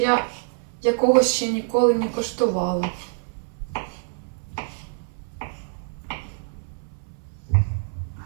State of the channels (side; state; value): left; silent; 61 dB below the other